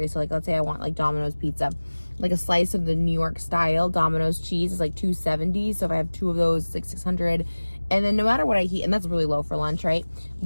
So like, let's say I want like Domino's pizza. Like a slice of the New York style Domino's cheese is like 270. So if I have 2 of those, it's like 600. And then no matter what I eat, and that's really low for lunch, right?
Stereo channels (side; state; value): both; inverted; correlation -1.00